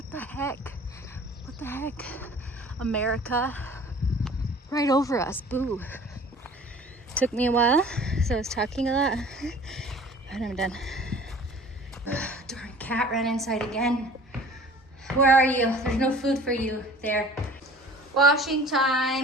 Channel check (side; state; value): both; normal; correlation 0.46